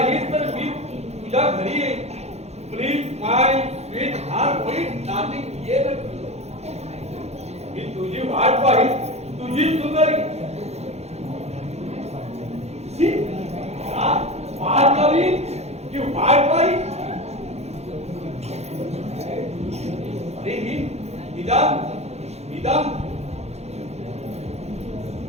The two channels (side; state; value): left; late; 0.31 ms